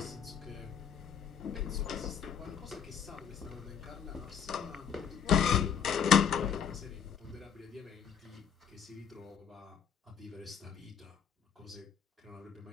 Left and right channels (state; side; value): quieter; right; 7.6 dB